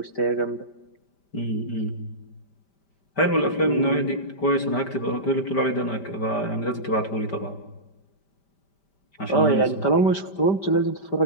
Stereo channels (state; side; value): late; right; 5.1 ms